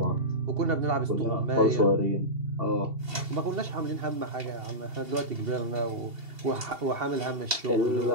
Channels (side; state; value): left; late; 2.7 ms